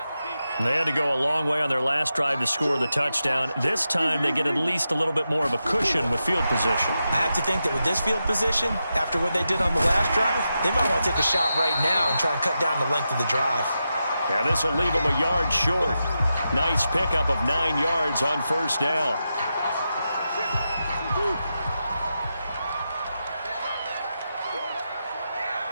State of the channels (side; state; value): both; inverted; correlation -0.88